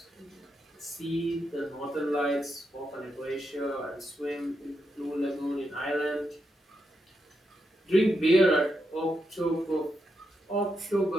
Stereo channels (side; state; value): both; normal; correlation 0.84